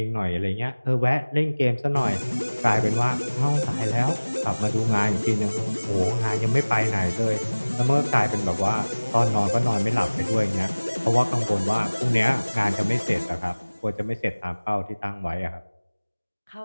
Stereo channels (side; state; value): both; inverted; correlation -1.00